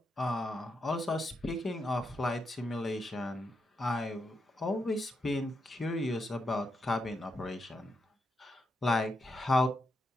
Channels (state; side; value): normal; both; correlation 0.83